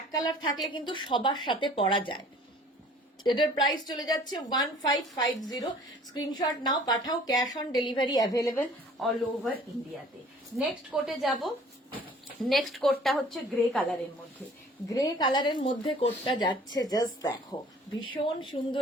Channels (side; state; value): both; normal; correlation 0.51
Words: কালার থাকলে কিন্তু সবার সাথে পরা যায়। এটার প্রাইস চলে যাচ্ছে 1550। স্ক্রিনশট নাও, পাঠাও, cash on delivery available all over ইন্ডিয়াতে। নেক্সট কোটে যাব। নেক্সট কোটটা হচ্ছে গ্রে কালারের মধ্যে। গ্রে কালারের মধ্যে কোটটা যাচ্ছে, জাস্ট দেখো, ভীষণ সুন্দর।